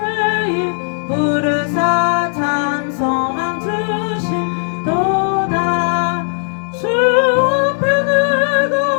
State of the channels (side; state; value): right; silent; digital silence